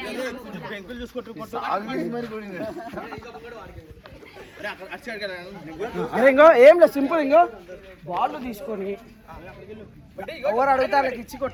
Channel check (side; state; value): both; identical; correlation 1.00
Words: అరే ఇంకో ఏం లేదు సింపుల్ ఇంకో బాల్ తీసుకొని ఎవరు అడిగితే వాళ్ళకి ఇచ్చి